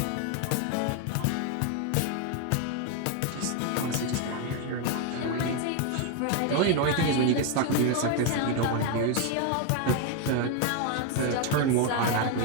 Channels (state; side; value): different; both; correlation 0.01